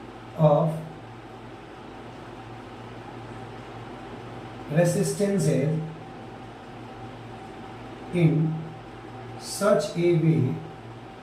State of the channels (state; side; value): identical; both; correlation 1.00